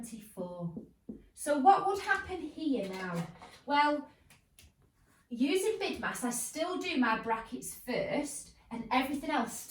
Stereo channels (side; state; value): both; identical; correlation 1.00